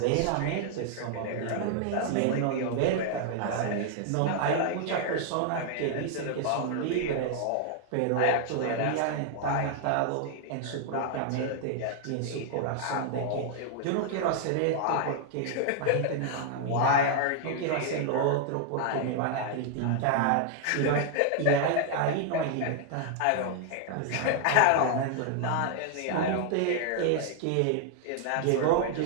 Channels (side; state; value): both; different; correlation 0.00